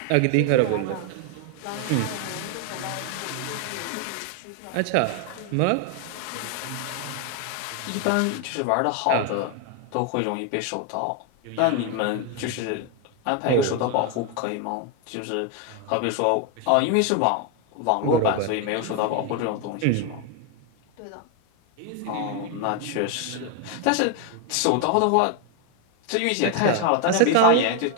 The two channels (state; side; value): different; both; correlation 0.01